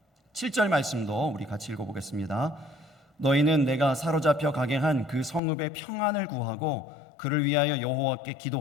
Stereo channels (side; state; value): right; drops out; at 5.4 s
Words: 7절 말씀도 우리 같이 읽어보겠습니다. 너희는 내가 사로잡혀 가게 한 그 성읍의 평안을 구하고 그를 위하여 여호와께